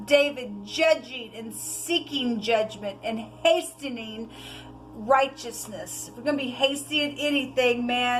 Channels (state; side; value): identical; both; correlation 1.00